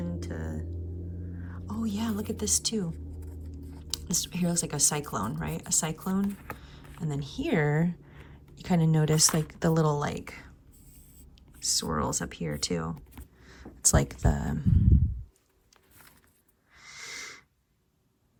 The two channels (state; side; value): identical; both; correlation 1.00